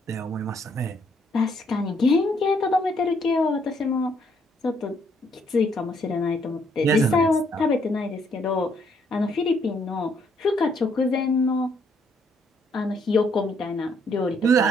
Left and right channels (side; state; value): both; normal; correlation 0.70